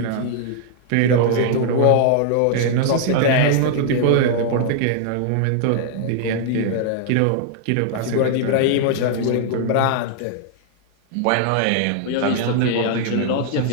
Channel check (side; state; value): both; different; correlation 0.00